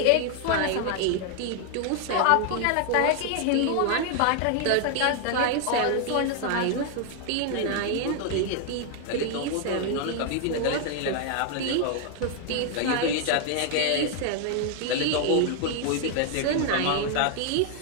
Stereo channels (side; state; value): both; different; correlation 0.00